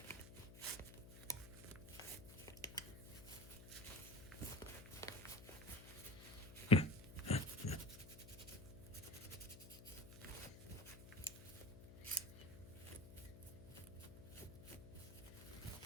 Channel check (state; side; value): noise; left; hum, 14 dB below the sound